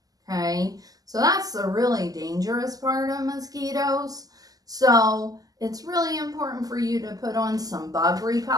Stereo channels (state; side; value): late; left; 0.17 ms